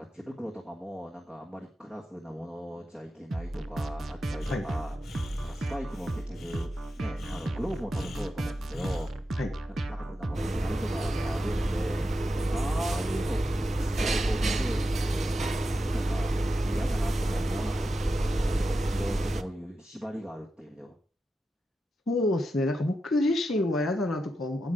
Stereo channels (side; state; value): both; normal; correlation 0.88